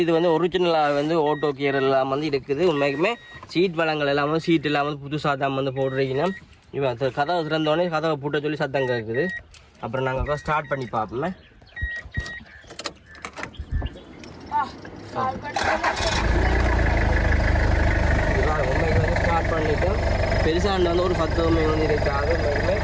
இது வந்து ஒரிஜினலாக வந்து ஓட்டோ கியர் எல்லாம் வந்து இருக்குது உண்மைக்குமே சீட் வளங்கள் எல்லாம் வந்து சீட் எல்லாம் வந்து புதுசாக தான் வந்து போடுறீங்கன்னா இவன் கதவை திறந்தோடனே கதவை பூட்ட சொல்லி சத்தம் கேட்குது அப்புறம் நாங்கள் ஸ்டார்ட் பண்ணி பார்ப்போமே உண்மைக்கு வந்து ஸ்டார்ட் பண்ணிட்டோம் பெருசாண்டு வந்து ஒரு 10 வந்து இருக்காது உண்மைக்குமே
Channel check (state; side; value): identical; both; correlation 1.00